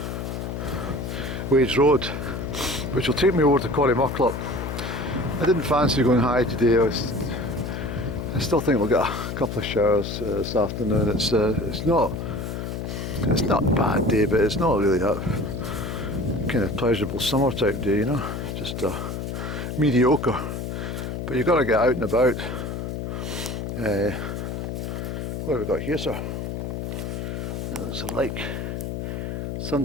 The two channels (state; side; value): noise; left; hum, 5 dB below the sound